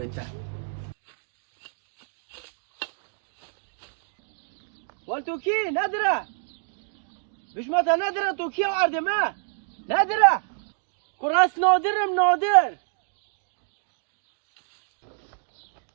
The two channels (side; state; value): left; silent; digital silence